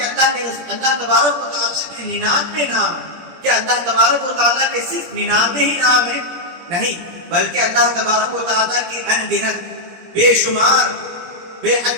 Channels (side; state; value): left; late; 17 ms